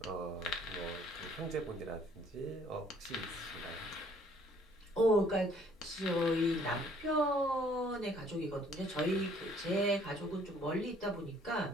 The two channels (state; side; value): normal; both; correlation 0.60